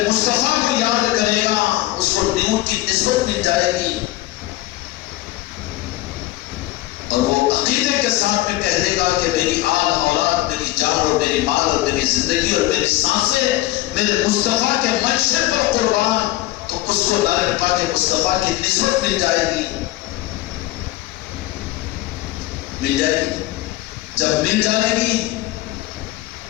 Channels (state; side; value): quieter; right; 17.2 dB